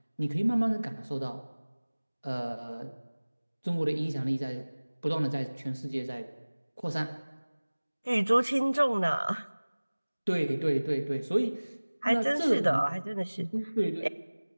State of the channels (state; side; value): inverted; both; correlation -1.00